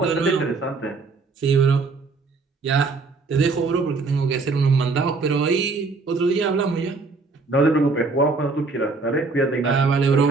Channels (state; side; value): quieter; left; 4.0 dB